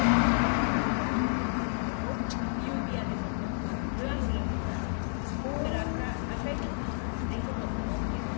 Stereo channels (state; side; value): silent; right; 58 dB below the other